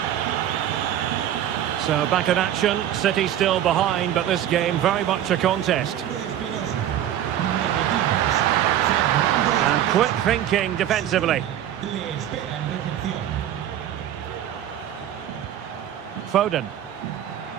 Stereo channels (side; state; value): left; quieter; 11.2 dB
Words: So back in action. City still behind, but this game very much a contest. And quick thinking defensively. Foden.